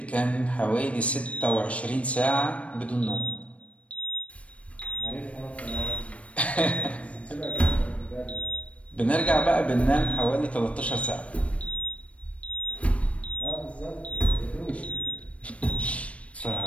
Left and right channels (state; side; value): late; right; 0.064 ms